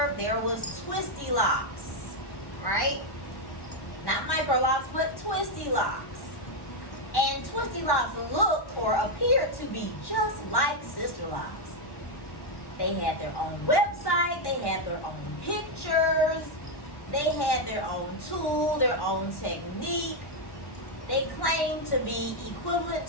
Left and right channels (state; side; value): late; right; 1.1 ms